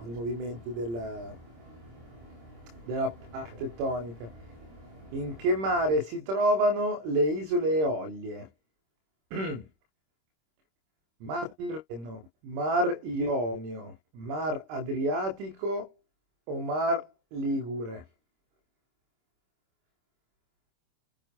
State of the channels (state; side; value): late; left; 26 ms